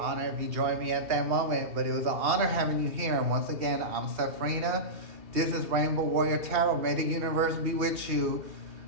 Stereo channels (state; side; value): late; left; 2.7 ms